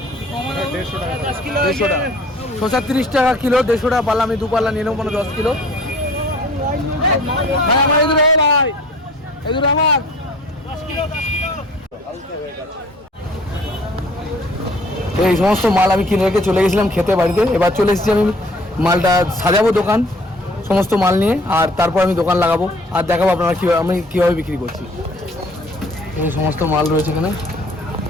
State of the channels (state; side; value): normal; both; correlation 0.53